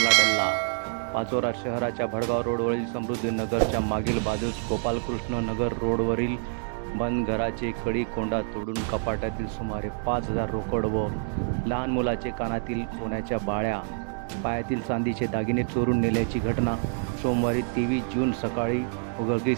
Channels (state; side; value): silent; left; 60 dB below the other